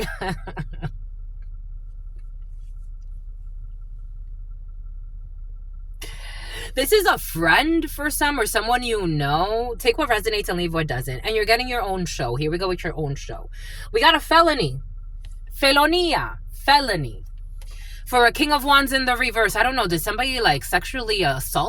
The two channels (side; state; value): both; identical; correlation 1.00